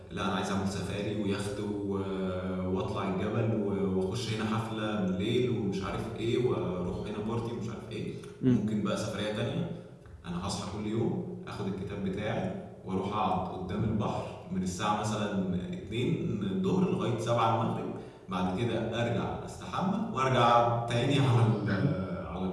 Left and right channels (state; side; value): identical; both; correlation 1.00